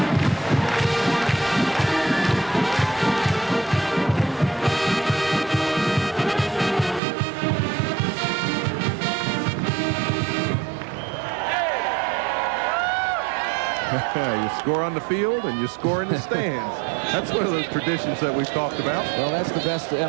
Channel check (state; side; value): drops out; left; at 7.0 s